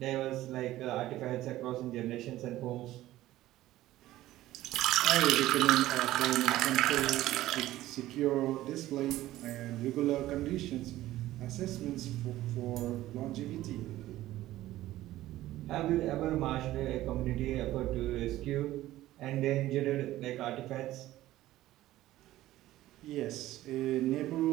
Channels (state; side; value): quieter; left; 15.3 dB